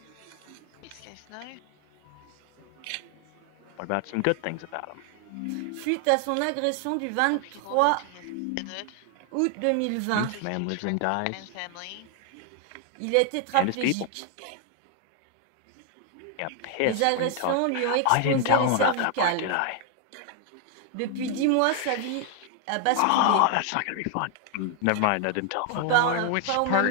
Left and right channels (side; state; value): both; different; correlation 0.00